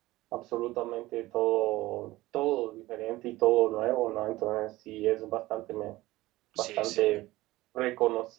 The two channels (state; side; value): quieter; left; 18.1 dB